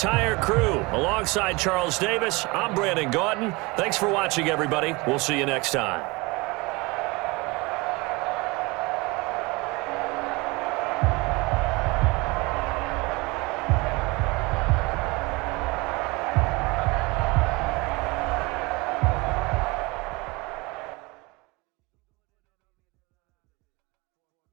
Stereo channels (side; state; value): left; quieter; 25.0 dB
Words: crew, alongside Charles Davis, I'm Brandon Gautin. Thanks for watching, everybody. We'll see you next time.